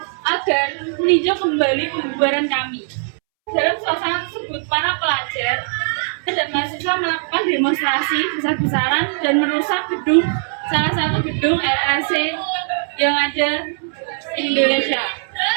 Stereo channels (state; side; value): silent; left; 66 dB below the other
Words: agar meninjau kembali pembubaran kami. Dalam suasana tersebut, para pelajar dan mahasiswa melakukan demonstrasi besar-besaran dan merusak salah satu gedung LRC yang ada di Indonesia.